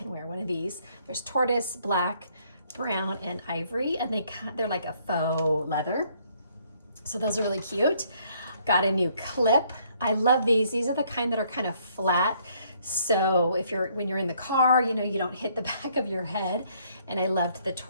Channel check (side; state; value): both; inverted; correlation -0.66